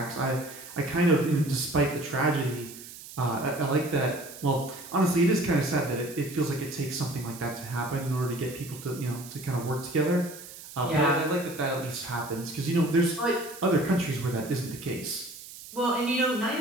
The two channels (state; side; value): noise; right; hiss, 15 dB below the sound